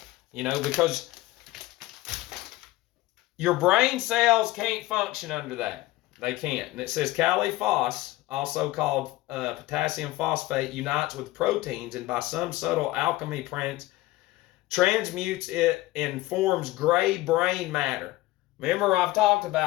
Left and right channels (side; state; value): right; quieter; 17.8 dB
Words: You know, because your brain cells can't function under that. They can't. And it says Caliphos, also called potassium phosphate, unites with proteins and by some subtle alchemy transmutes it and forms gray brain matter. Remember, I've talked